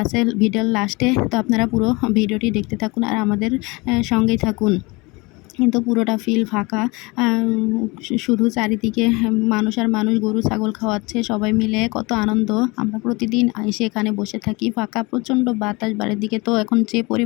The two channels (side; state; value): right; quieter; 25.3 dB